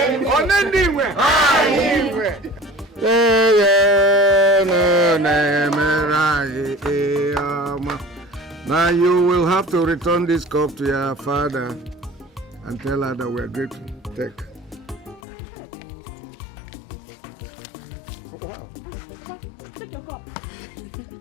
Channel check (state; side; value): drops out; right; at 15.2 s